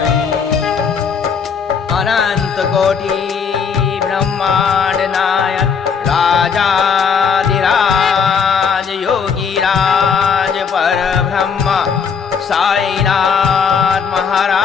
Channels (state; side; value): quieter; right; 6.3 dB